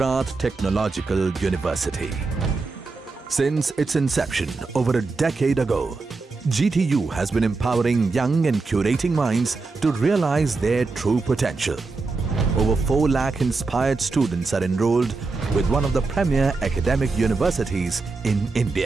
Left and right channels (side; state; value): left; quieter; 3.9 dB